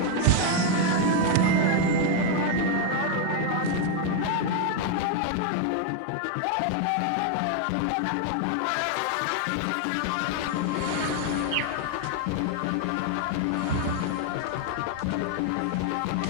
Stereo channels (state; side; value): different; both; correlation 0.00